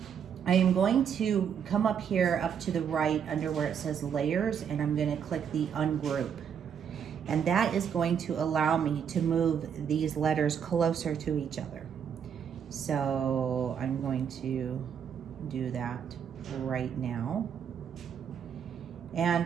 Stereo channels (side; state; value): left; quieter; 7.8 dB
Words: I am going to come up here up to the right under where it says layers, and I'm gonna click the ungroup. And that is going to allow me to move these letters closer to each other. So I'm going to do that right now.